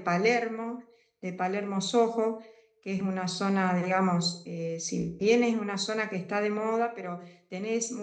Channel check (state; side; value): identical; both; correlation 1.00